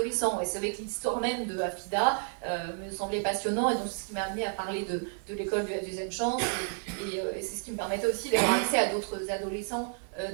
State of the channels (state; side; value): silent; left; 57 dB below the other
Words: Et c'est vrai que l'histoire même de Afida me semblait passionnant, et donc c'est ce qui m'a amené à parler de l'école de la deuxième chance, et c'est ce qui me permettait aussi d'avoir accès à d'autres adolescents